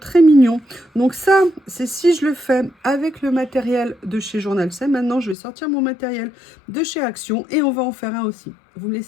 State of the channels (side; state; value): right; drops out; at 5.4 s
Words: mignon. Donc ça, c'est si je le fais avec le matériel de chez Journal C. Maintenant, je vais sortir mon matériel de chez Action et on va en faire un aussi. Vous me